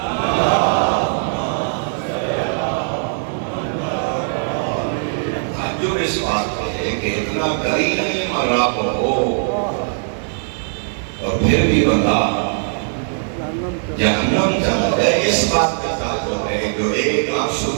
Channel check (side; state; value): left; silent; 58 dB below the other